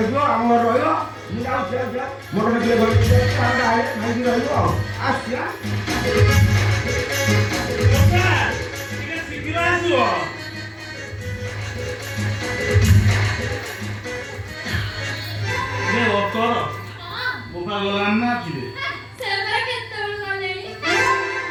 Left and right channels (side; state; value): both; identical; correlation 1.00